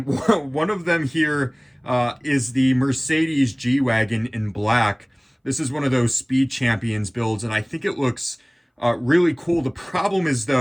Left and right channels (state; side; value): identical; both; correlation 1.00